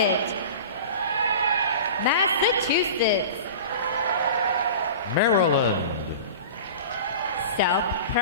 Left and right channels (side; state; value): both; inverted; correlation -0.36